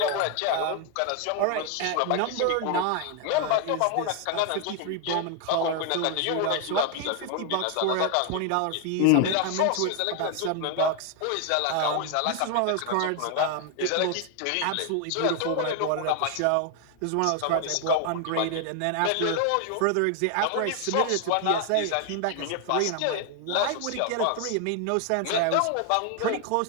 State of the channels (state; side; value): different; both; correlation 0.01